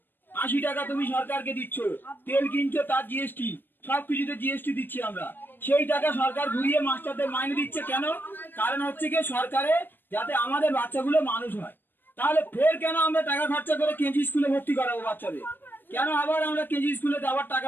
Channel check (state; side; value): late; right; 0.095 ms